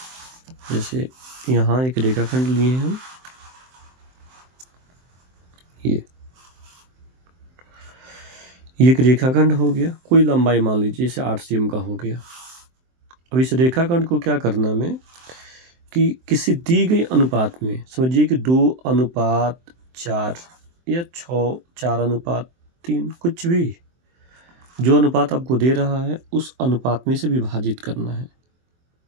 जैसे यहाँ एक रेखाखंड लिए हम, ये। ये एक रेखाखंड हो गया, कोई लंबाई मान लीजिए जैसे 8 सीएम का हो गया। अब इस रेखाखंड को क्या करना हमें कि किसी दी गई अनुपात में, समझिए कि 2:4 या 4:3, कुछ भी जो अनुपात आपको दे रहा है उस अनुपात में से विभाजित करना है।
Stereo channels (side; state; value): left; late; 23 ms